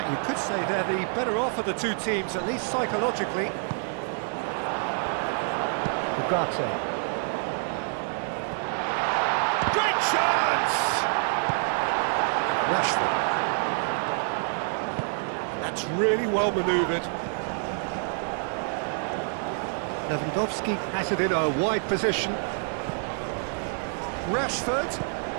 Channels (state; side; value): silent; left; 56 dB below the other